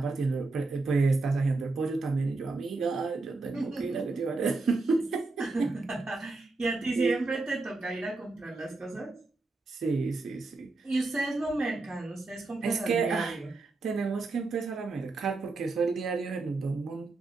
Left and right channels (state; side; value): quieter; left; 3.5 dB